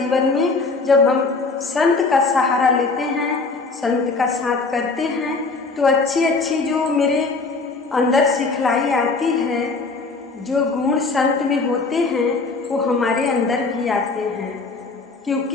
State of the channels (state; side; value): quieter; right; 4.0 dB